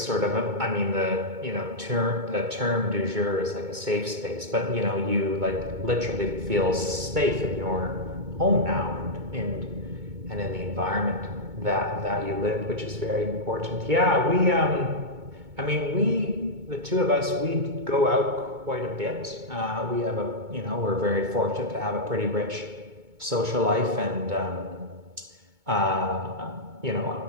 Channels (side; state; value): left; late; 2.2 ms